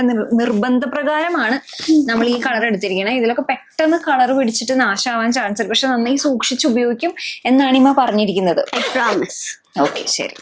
നിർബന്ധപ്രകാരമാണ് നമ്മൾ ഈ കളർ എടുത്തിരിക്കുന്നത്. ഇതിലൊക്കെ പെട്ടെന്ന് കളർ പിടിച്ചിട്ട് നാശമാവാൻ ചാൻസ് ഉണ്ട്. പക്ഷെ നന്നായി സൂക്ഷിച്ച് ഉപയോഗിക്കും എന്നാണ് ഇമ്മ പറഞ്ഞിരിക്കുന്നത്. ഓക്കെ, ശരി,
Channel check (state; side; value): identical; both; correlation 1.00